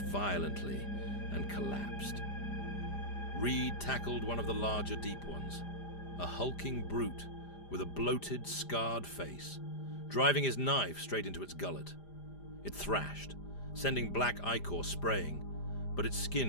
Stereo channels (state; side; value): late; right; 5.0 ms